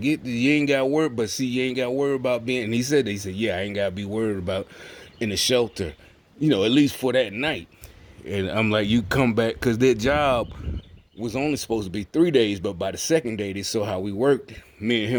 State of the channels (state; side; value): identical; both; correlation 1.00